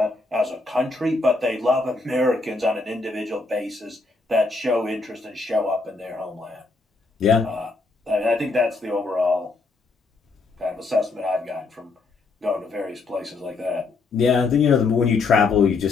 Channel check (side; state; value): right; quieter; 3.8 dB